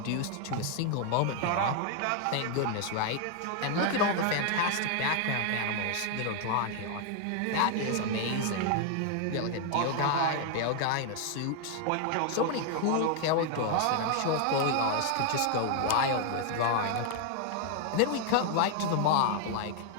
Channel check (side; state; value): both; different; correlation 0.00